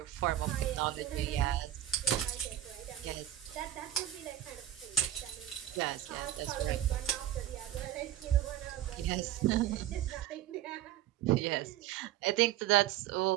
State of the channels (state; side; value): quieter; left; 12.5 dB